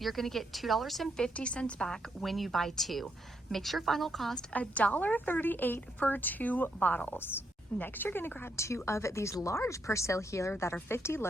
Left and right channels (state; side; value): normal; both; correlation 0.78